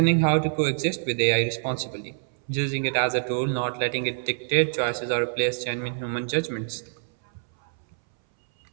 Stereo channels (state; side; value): silent; left; 61 dB below the other